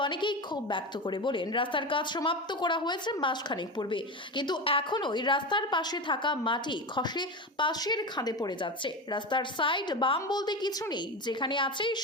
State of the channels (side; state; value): both; normal; correlation 0.22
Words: অনেকেই ক্ষোভ ব্যক্ত করে বলেন, রাস্তার কাজ সমাপ্ত করা হয়েছে মাসখানেক পূর্বে, কিন্তু এখনোই রাস্তার পাশে থাকা মাটি খসে পাশের খাদে পড়ে যাচ্ছে। রাস্তার সাইড বাম বলতে কিছু নেই, যেখানে আছে